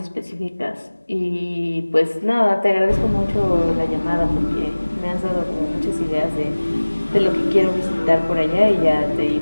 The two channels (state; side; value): inverted; both; correlation -1.00